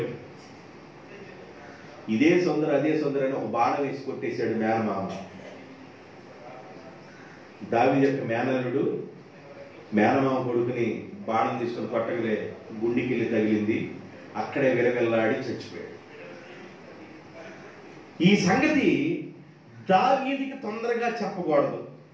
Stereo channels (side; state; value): both; identical; correlation 1.00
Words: ఇదే సుందర అదే సుందర అని ఒక బాణం వేసి కొట్టేశాడు మేనమామ. దావీదు యొక్క మేనల్లుడు మేనమామ కొడుకుని బాణం తీసుకొని కొట్టగలే గుండెకి తగిలింది. అక్కడే విలవిల్లాడి చచ్చిపోయాడు. ఈ సంగతి దావీదుకి తొందరగా చెప్పకూడదు.